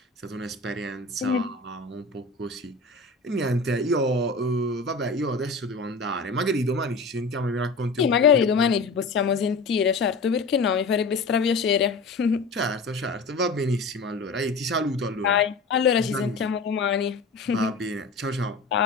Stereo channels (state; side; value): quieter; right; 3.7 dB